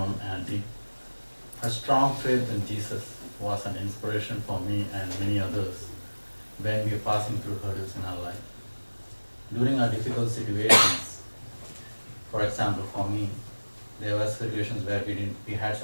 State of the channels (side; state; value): both; inverted; correlation -1.00